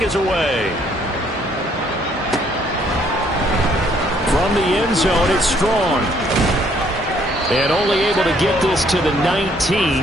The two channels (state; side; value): normal; both; correlation 0.65